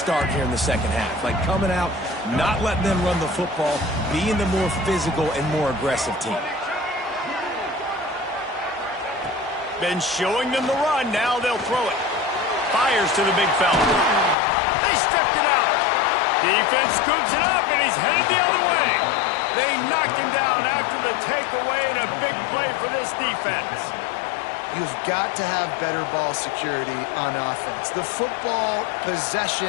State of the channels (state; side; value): drops out; right; at 14.4 s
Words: here in the second half. Like coming out, not letting them run the football, being the more physical and more aggressive team. Been showing them the run. Now they'll throw it. Fires to the big fella. They stripped it out. Defense scoops it up, and he's headed the other way. They knocked him down after the takeaway, and a big play for this defense. You've got to have better ball security on offense. The football